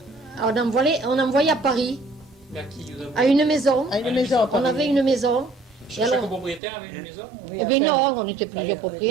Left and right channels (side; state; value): left; drops out; at 6.6 s